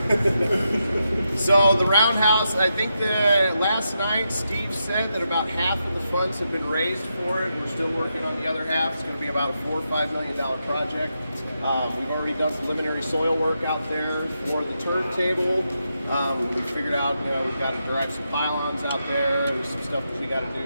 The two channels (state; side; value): inverted; both; correlation -0.85